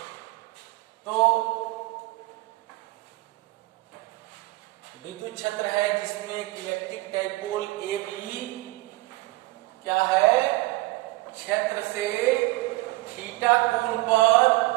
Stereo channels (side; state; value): left; quieter; 20.5 dB